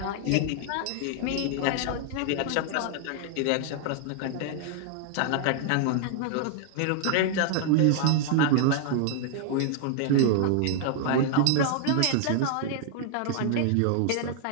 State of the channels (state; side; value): different; both; correlation 0.00